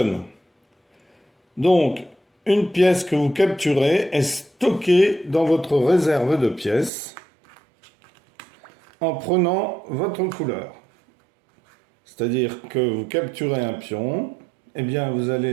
Donc, une pièce que vous capturez est stockée dans votre réserve de pièces en prenant votre couleur. C'est-à-dire que vous capturez un pion, et bien vous allez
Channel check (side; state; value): left; drops out; at 6.9 s